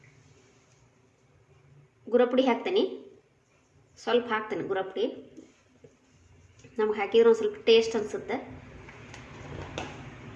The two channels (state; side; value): identical; both; correlation 1.00